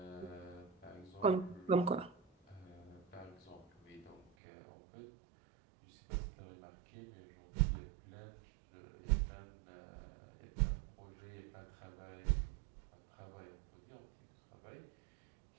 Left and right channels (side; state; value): left; drops out; at 4.3 s